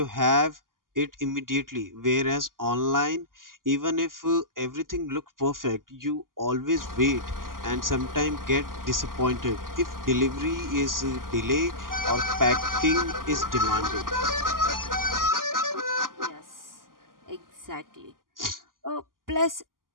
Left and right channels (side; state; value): left; late; 0.91 ms